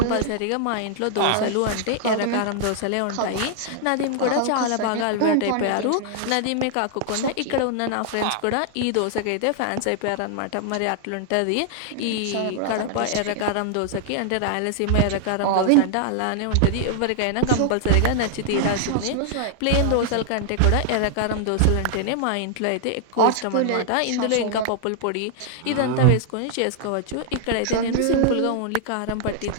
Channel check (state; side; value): different; both; correlation -0.01